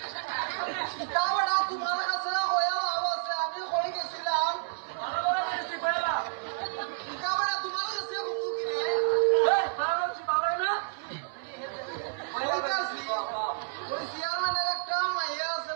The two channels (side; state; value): left; silent; 58 dB below the other